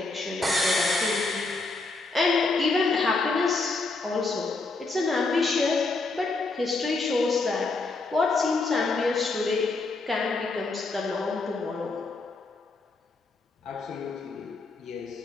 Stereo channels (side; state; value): right; quieter; 3.6 dB